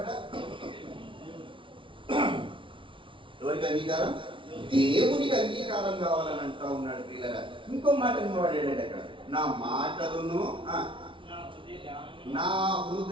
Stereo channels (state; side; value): late; left; 0.25 ms